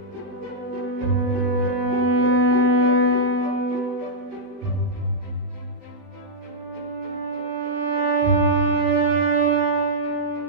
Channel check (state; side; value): late; left; 16 ms